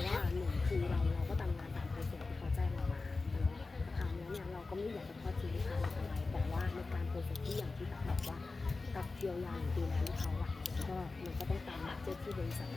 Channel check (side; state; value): right; quieter; 3.7 dB